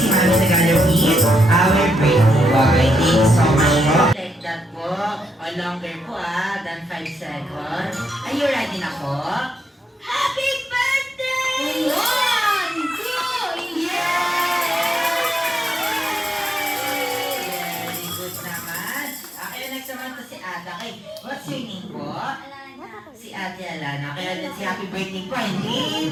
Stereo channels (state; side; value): normal; both; correlation 0.80